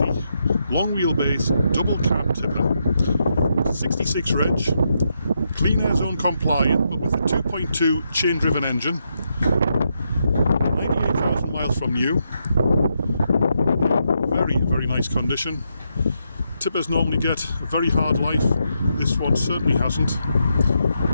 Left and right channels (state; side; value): inverted; both; correlation -0.81